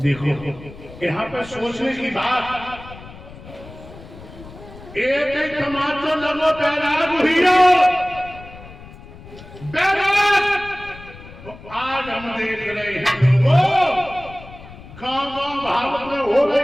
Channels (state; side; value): noise; left; rumble, 17 dB below the sound